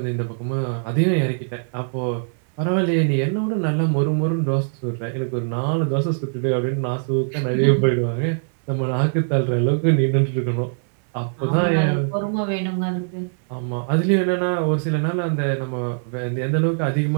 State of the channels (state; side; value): silent; left; 63 dB below the other